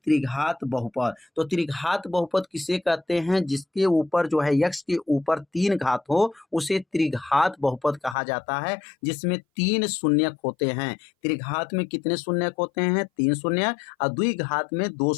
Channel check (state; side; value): drops out; right; at 8.2 s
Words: बहुपद। तो त्रिघात बहुपद किसे कहते हैं, जिसके ऊपर जो है x के ऊपर 3 घात हो, उसे त्रिघात बहुपद कहा जाता है, जिसमें 3 शून्यक होते हैं। त्रिघात में कितने शून्यक होते हैं, 3 शून्यक, और द्विघात में 2